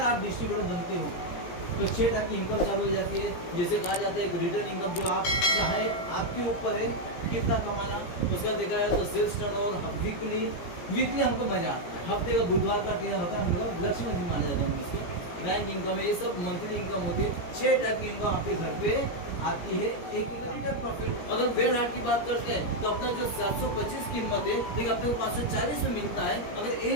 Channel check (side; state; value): right; late; 17 ms